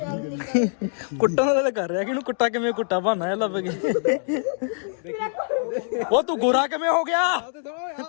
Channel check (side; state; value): right; silent; digital silence